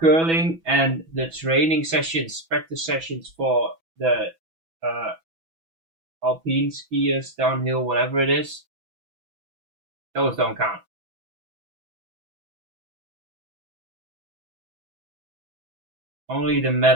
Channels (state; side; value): late; left; 6.1 ms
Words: and the training sessions, practice sessions for the alpine skiers, downhill, whatever it is, those don't count. Only the